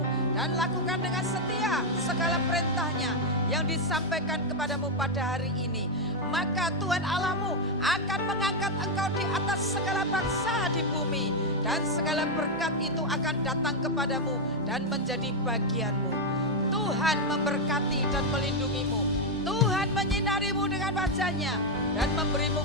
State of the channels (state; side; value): noise; left; hum, 20 dB below the sound